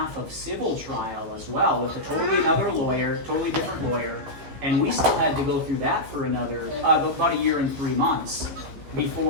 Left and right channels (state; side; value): late; left; 15 ms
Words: of civil trial as well with a totally another lawyer, totally different lawyer. And we still had to go through that for another, about a year and 3 months